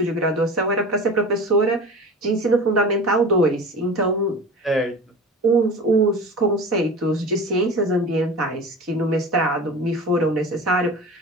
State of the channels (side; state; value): both; normal; correlation 0.35